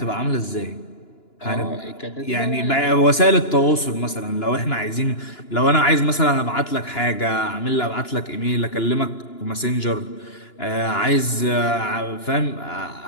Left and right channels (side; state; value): right; late; 2.9 ms